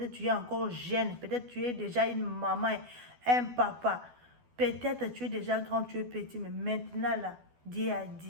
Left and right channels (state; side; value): late; left; 12 ms